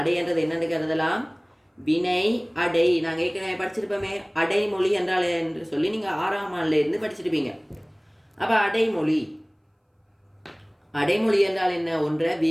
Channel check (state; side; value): identical; both; correlation 1.00